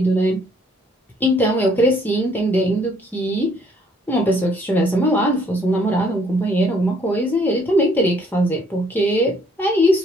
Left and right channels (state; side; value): normal; both; correlation 0.64